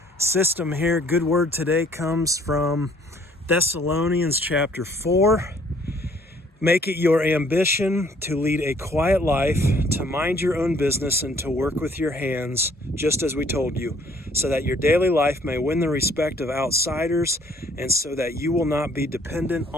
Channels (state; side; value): normal; both; correlation 0.60